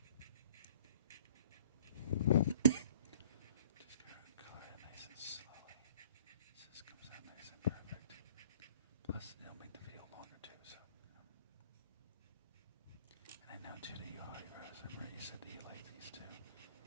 Just gotta color it nice and slowly. So this comes out nice and perfect. Plus, it'll make the video longer too, so, And I know too that you already rose. I remember you said that you like these too.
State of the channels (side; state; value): both; inverted; correlation -0.53